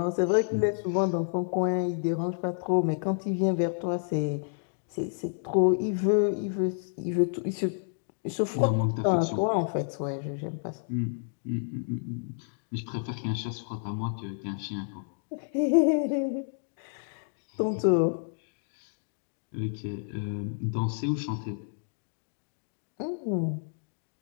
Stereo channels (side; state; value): right; silent; digital silence